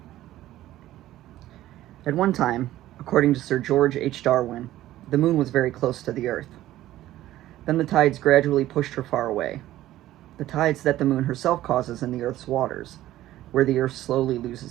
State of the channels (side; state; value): left; quieter; 14.5 dB